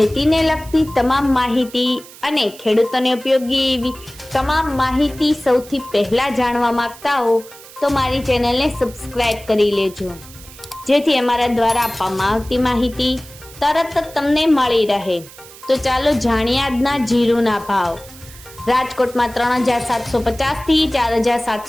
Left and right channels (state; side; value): noise; right; hiss, 19 dB below the sound